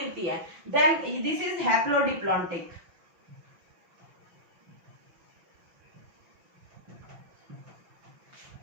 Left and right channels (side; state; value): left; late; 5.9 ms